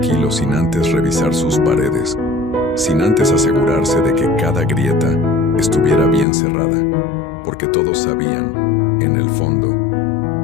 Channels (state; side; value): drops out; right; at 6.2 s